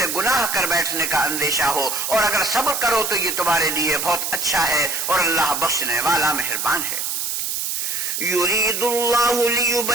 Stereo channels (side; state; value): right; noise; hiss, 2 dB below the sound